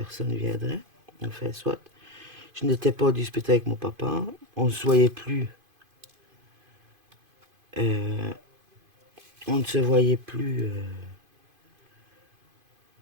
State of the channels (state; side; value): late; left; 2.5 ms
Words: viendraient. Enfin, soit. Je n'étais pas en dispute avec mon papa. On ne se voyait plus. On ne se voyait plus.